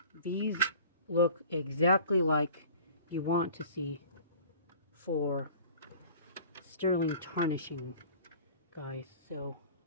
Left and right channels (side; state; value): both; inverted; correlation -0.45